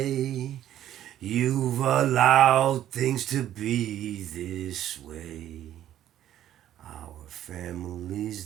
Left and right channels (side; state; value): left; quieter; 11.9 dB